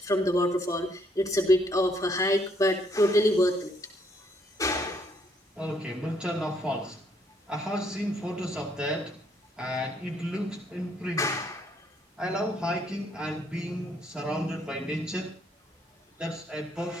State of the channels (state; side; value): normal; both; correlation 0.69